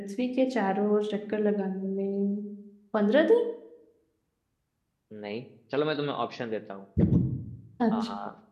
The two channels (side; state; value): both; identical; correlation 1.00